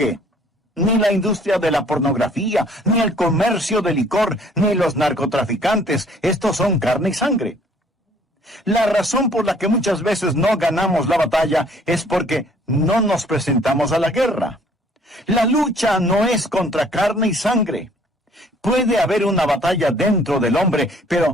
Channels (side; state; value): both; normal; correlation 0.58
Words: ni la industria de la pornografía, ni el comercio de licor, ni los narcotraficantes. Estos son carne y sangre. La razón por la que muchas veces no ganamos la batalla es porque no nos presentamos a la guerra. La lucha no es contra carne y sangre. Puede haber una batalla dentro del hombre,